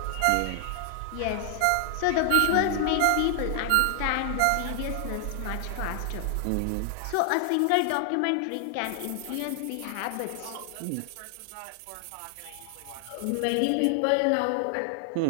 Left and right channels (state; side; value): different; both; correlation 0.00